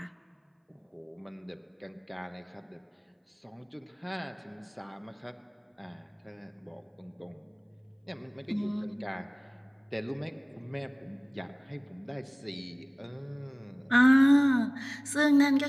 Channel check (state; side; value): identical; both; correlation 1.00